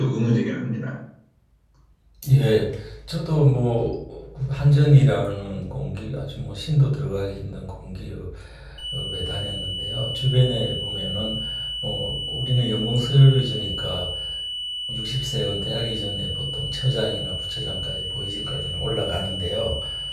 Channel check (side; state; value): both; identical; correlation 1.00